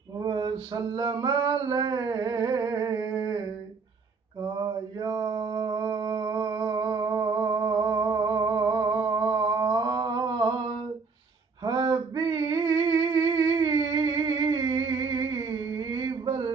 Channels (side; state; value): left; quieter; 4.9 dB